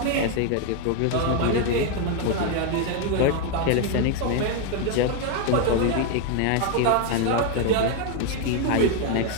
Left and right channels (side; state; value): both; different; correlation 0.01